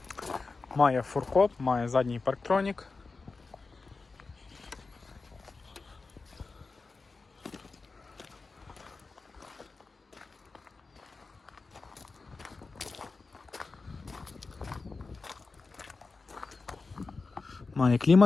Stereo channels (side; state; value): right; quieter; 4.0 dB